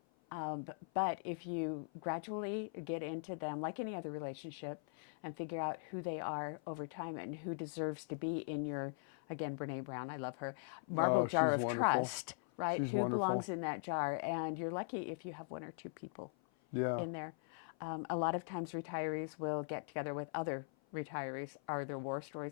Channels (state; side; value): silent; right; 51 dB below the other